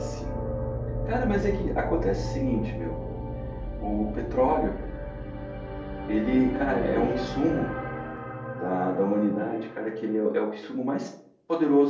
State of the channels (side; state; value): both; identical; correlation 1.00